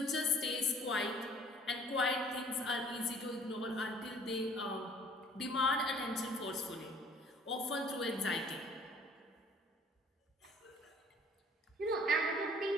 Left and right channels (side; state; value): both; normal; correlation 0.54